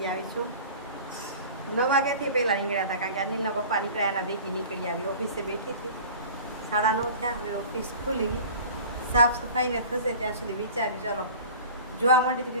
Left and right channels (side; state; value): both; inverted; correlation -0.40